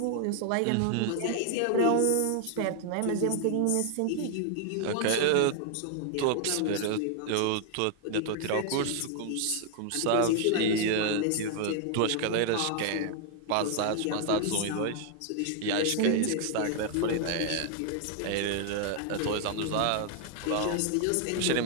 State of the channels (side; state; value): both; different; correlation 0.00